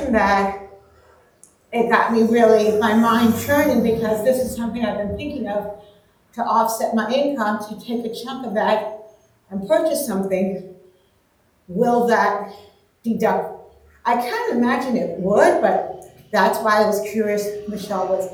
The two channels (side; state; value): both; identical; correlation 1.00